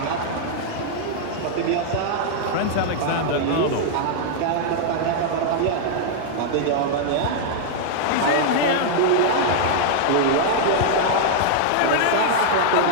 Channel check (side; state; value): both; different; correlation -0.01